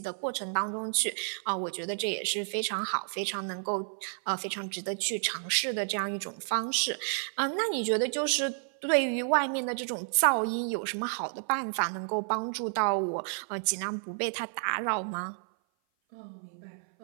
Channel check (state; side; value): silent; left; 56 dB below the other